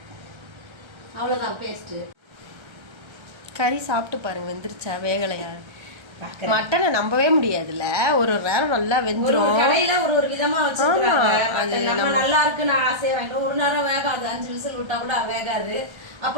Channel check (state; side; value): late; left; 1.3 ms